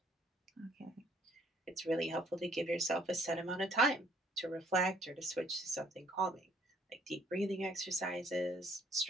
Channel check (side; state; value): both; normal; correlation 0.63